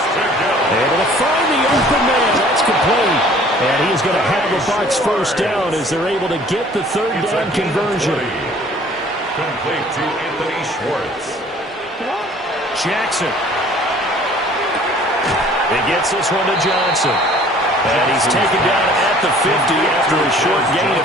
Able to find the open man. That's complete. And he's going to have the Bucs first down as they're able to get the 3rd down conversion. Complete to Anthony Schwartz. Jackson. He gets this one to Johnson. And he's taken down at the 50 after a short gain of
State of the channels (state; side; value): normal; both; correlation 0.53